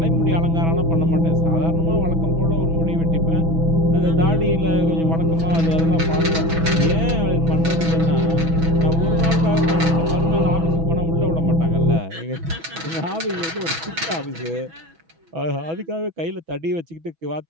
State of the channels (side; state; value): left; late; 6.1 ms